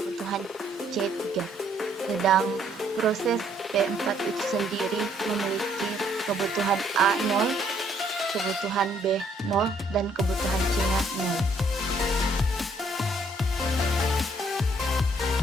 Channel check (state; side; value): normal; both; correlation 0.66